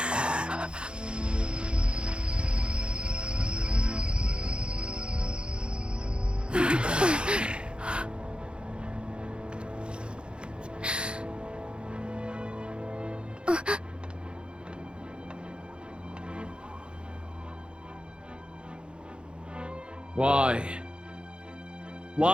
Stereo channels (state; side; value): late; left; 0.054 ms